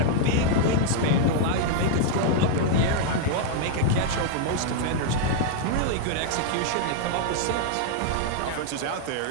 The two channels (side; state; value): both; different; correlation 0.00